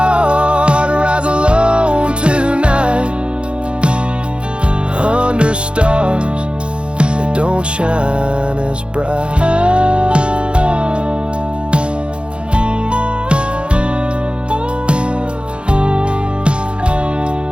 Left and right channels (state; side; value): late; left; 0.057 ms